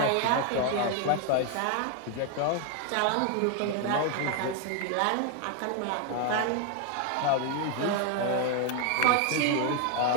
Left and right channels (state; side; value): different; both; correlation 0.01